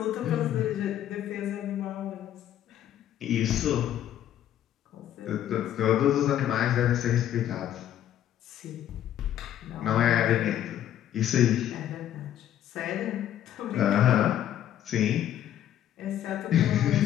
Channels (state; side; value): quieter; right; 11.3 dB